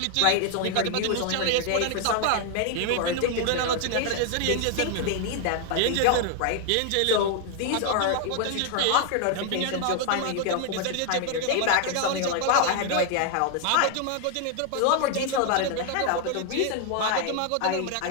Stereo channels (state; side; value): different; both; correlation 0.00